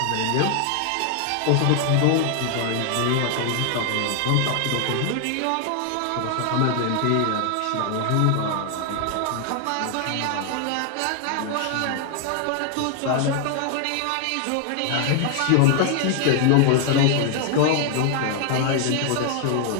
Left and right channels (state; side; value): different; both; correlation 0.00